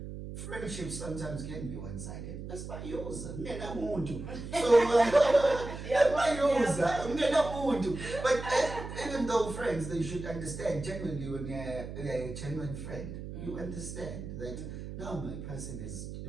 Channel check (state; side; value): noise; right; hum, 9 dB below the sound